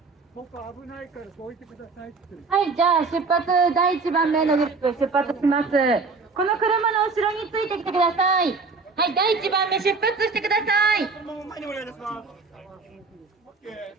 ここ危ないからどいてくださいって。はい、じゃあ出発第1番目のグループ出発します。この車の後ろについてきてください。はい、第1番目出発してください。このまま前にお願いします。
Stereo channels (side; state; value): left; quieter; 4.3 dB